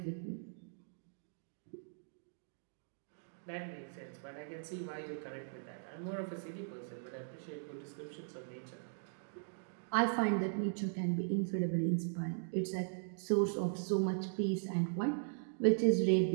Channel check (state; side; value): silent; left; digital silence